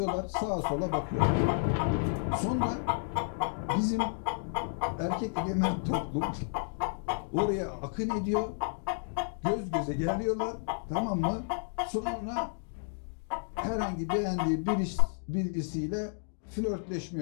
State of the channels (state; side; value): silent; right; digital silence